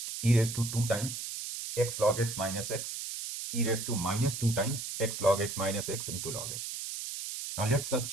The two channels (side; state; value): right; noise; hiss, 6 dB below the sound